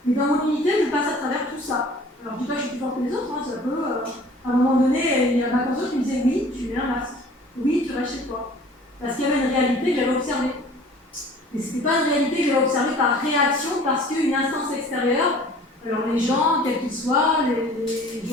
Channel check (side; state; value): both; normal; correlation 0.48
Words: Mais dans mon unité, je passe à travers tout ça. Alors, je ne dis pas que je suis plus fort que les autres, hein, ça peut. À un moment donné, il y a ma conscience qui me disait oui, tu mets un masque. Oui, tu restes chez toi. Parce qu'il y avait une réalité que j'avais observée. Mais ce n'était pas une réalité que j'avais observée par réaction, parce qu'une instance extérieure, alors les gens, quels qu'ils soient,